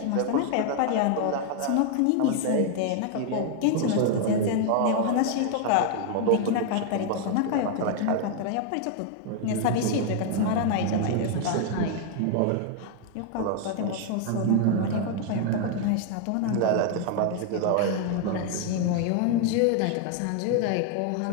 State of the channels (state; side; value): different; both; correlation 0.00